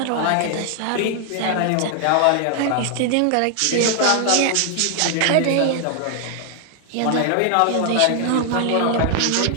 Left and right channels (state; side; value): different; both; correlation 0.00